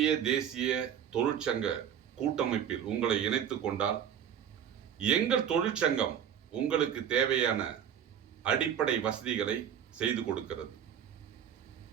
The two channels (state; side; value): quieter; left; 9.0 dB